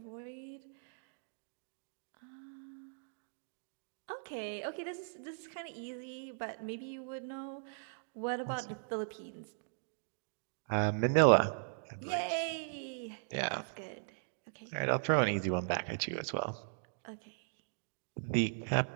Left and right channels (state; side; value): silent; left; digital silence